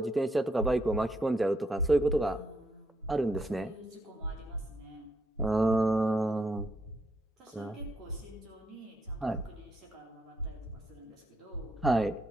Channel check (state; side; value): normal; both; correlation 0.77